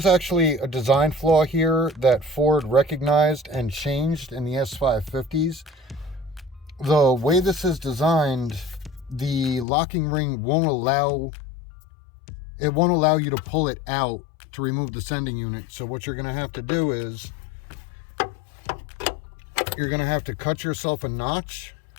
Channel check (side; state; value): right; drops out; at 9.7 s